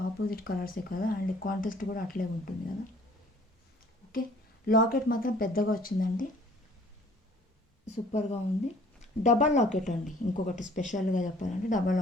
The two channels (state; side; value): normal; both; correlation 0.55